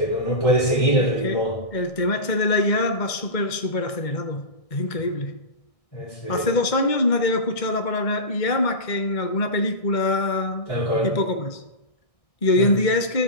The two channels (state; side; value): late; right; 1.6 ms